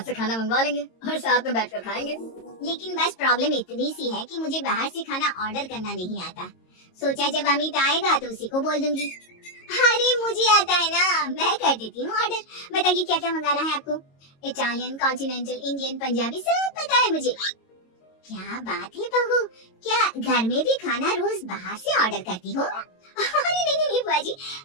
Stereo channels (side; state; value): right; late; 22 ms